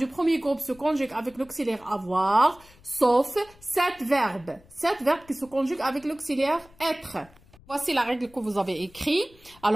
premier groupe se conjuguent avec l'auxiliaire avoir, sauf 7 verbes. 7 verbes qui se conjuguent avec l'auxiliaire être. Voici la règle que vous avez écrite.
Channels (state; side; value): noise; left; rumble, 26 dB below the sound